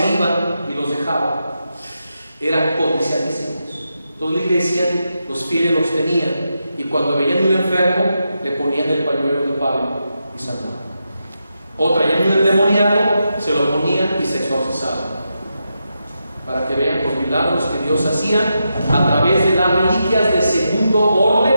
iban y los dejaba. Eran codiciadísimos. Entonces la iglesia, los fieles los tenían, y cuando veían un enfermo, le ponían el pañuelo de Pablo y sanaban. O traían un endemoniado, se lo ponían y se exorcizaban. Para que vean los milagros que Dios hacía a través de las reliquias de segundo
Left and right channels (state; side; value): inverted; both; correlation -0.86